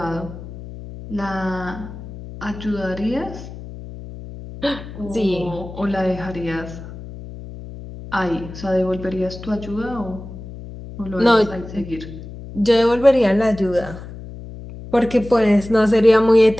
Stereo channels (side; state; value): left; noise; hum, 13 dB below the sound